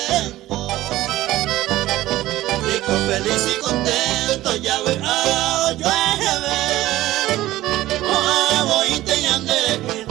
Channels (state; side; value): quieter; left; 15.8 dB